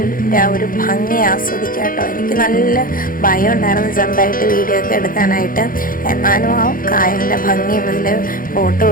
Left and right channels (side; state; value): right; late; 0.41 ms